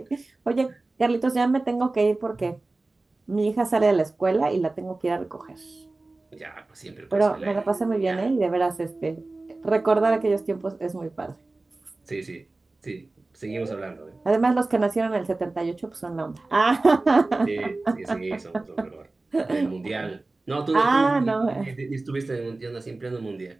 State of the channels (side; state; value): left; quieter; 3.2 dB